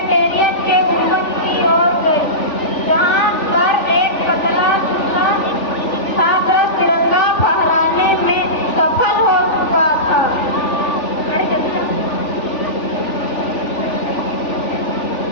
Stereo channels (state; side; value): late; right; 3.4 ms